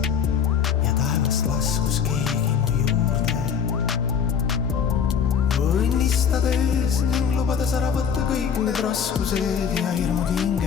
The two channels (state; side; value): quieter; right; 7.3 dB